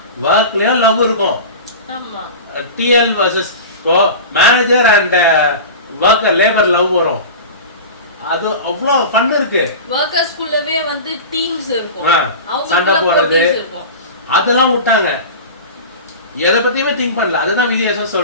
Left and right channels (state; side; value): inverted; both; correlation -0.31